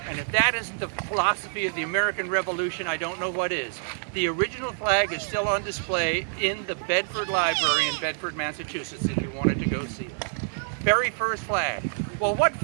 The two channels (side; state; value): left; silent; digital silence